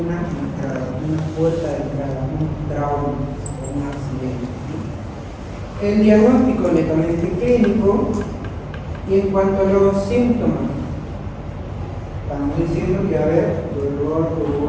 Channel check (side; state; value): both; identical; correlation 1.00